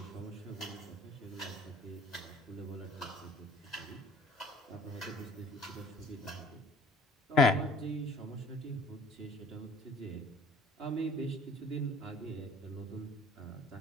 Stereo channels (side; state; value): both; normal; correlation 0.51